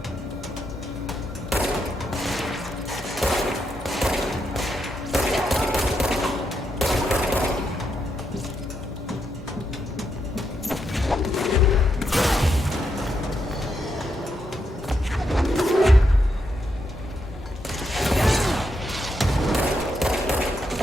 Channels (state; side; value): normal; both; correlation 0.81